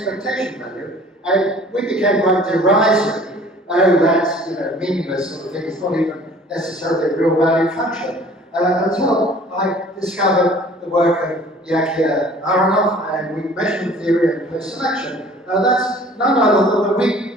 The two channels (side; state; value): both; normal; correlation 0.50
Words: value, and we became quite derisory. Oh, that's meaningless sort of thing. It's not even necessarily a real value function. Until I discovered the work of Yakir Aharonov and weak measurement theory and post-selection. That's none other than the